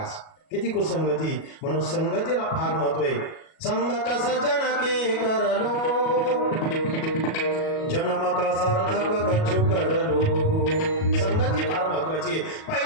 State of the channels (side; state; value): right; late; 37 ms